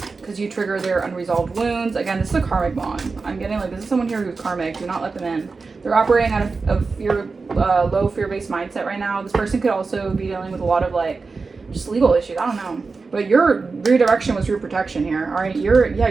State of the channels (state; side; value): quieter; left; 4.3 dB